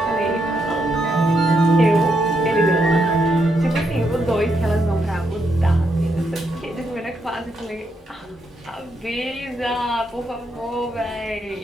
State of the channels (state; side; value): normal; both; correlation 0.79